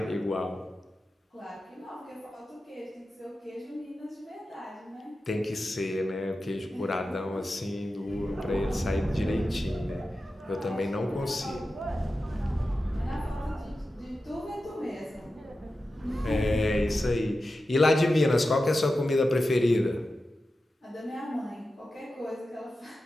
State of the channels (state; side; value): normal; both; correlation 0.92